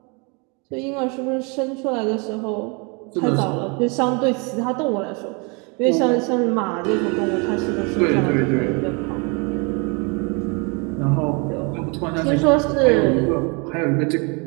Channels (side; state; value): left; quieter; 31.8 dB